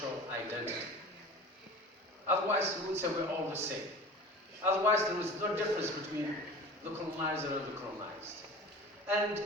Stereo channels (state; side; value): normal; both; correlation 0.37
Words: identity. Otherwise, we would say we're all the same. Otherwise, there is no difference between the colonizer and the colonized. And